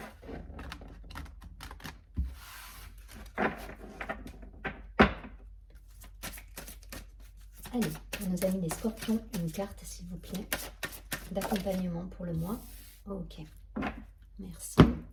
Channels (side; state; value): both; identical; correlation 1.00